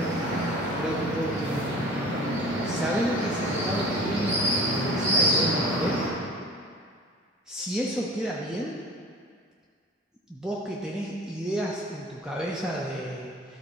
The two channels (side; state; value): both; normal; correlation 0.41